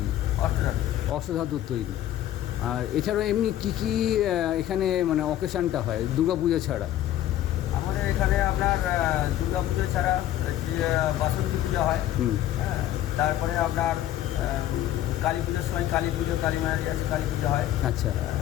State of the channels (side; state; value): right; quieter; 12.8 dB